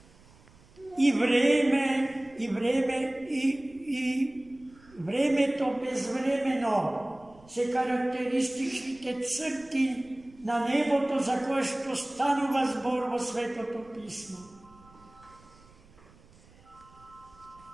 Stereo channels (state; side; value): noise; right; rumble, 26 dB below the sound